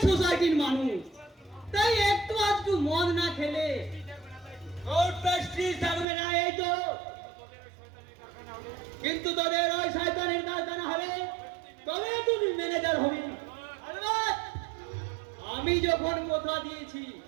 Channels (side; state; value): left; drops out; at 6.1 s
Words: সোসাইটির মানুষ, তাই একটু আধটু মদ না খেলে ওর প্রেস্টিজ থাকবে না, এই তো। কিন্তু তোদের ওই শয়তানের কারখানা হবে, তবে তুমি ম্যানেজার হবি। আলবাত আমি যখন কথা দিয়েছি